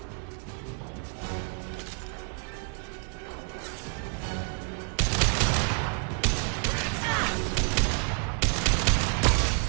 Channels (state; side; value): quieter; left; 39.7 dB